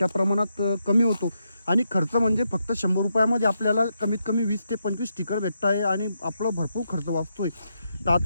प्रमाणात कमी होतो. आणि खर्च म्हणजे फक्त 100 रुपयामध्ये आपल्याला कमीत कमी 20 ते 25 स्टिकर भेटत आहे आणि आपला भरपूर खर्च वाचतोय. तर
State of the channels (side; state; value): both; inverted; correlation -0.82